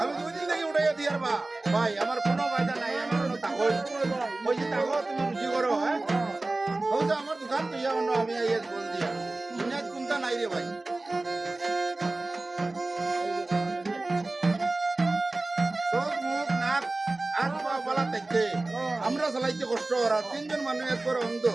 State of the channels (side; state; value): left; quieter; 3.0 dB